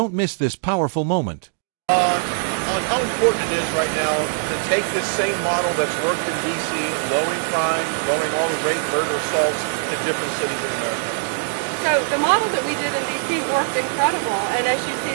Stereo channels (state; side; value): silent; left; digital silence